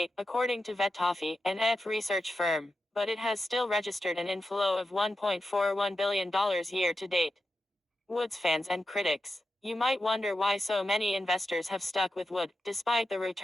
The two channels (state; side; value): normal; both; correlation 0.89